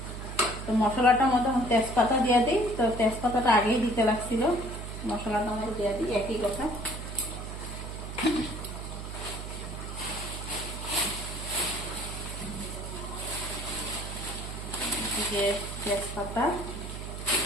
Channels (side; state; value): right; noise; hum, 8 dB below the sound